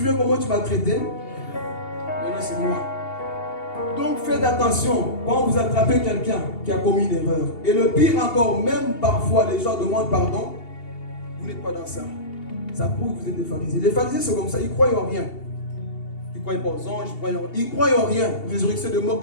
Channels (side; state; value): right; late; 2.8 ms